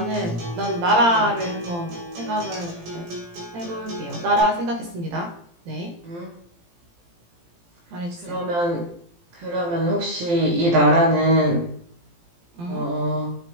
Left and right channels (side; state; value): left; late; 17 ms